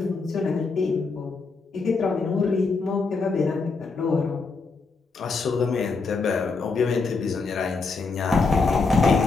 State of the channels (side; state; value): right; quieter; 4.2 dB